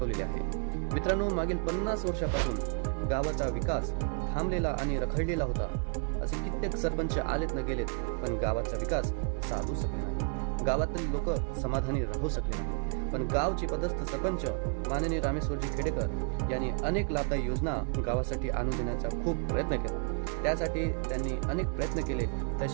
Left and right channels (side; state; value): left; quieter; 39.4 dB